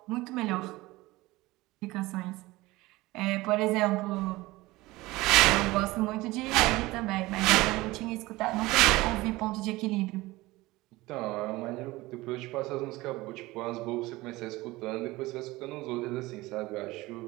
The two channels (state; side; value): quieter; left; 19.9 dB